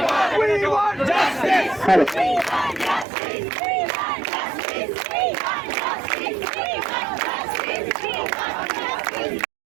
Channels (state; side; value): drops out; left; at 3.1 s